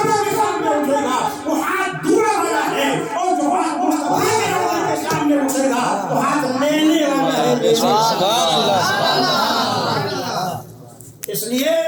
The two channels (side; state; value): both; identical; correlation 1.00